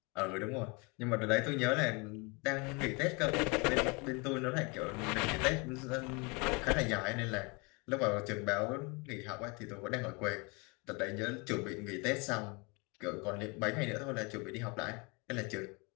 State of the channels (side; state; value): right; quieter; 29.6 dB